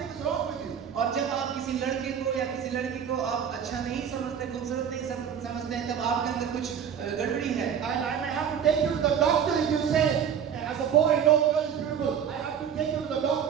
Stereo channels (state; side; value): quieter; left; 8.1 dB